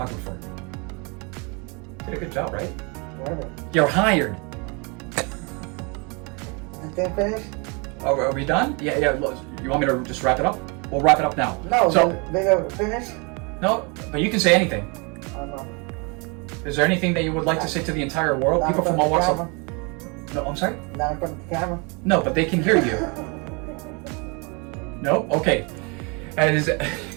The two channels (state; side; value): quieter; left; 31.5 dB